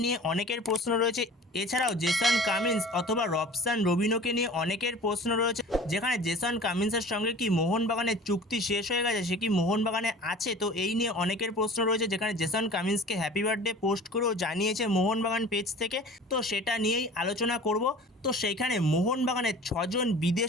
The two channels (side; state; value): both; normal; correlation 0.43